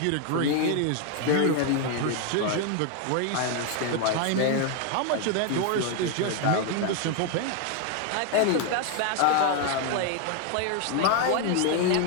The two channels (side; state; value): both; different; correlation 0.01